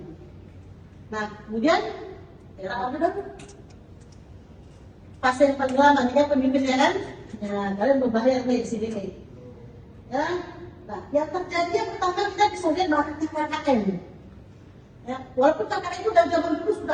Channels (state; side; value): identical; both; correlation 1.00